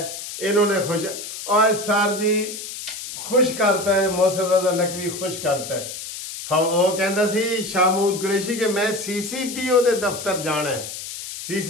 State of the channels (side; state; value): left; noise; hiss, 9 dB below the sound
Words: इन्होंने खुश। और सर जी खुश करता है, मोहसिन रजा नकवी खुश करता है। वो कहता सी शामूद कुरैशी कि मैं CCPO ਦੇ ਦਫ਼ਤਰ ਜਾਣਾ ਹੈ।